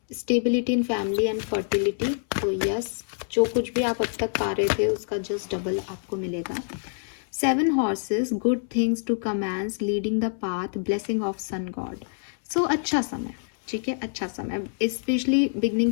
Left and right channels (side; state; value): right; silent; 61 dB below the other